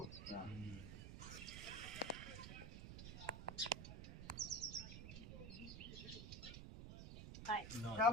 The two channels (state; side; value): noise; right; rumble, 8 dB below the sound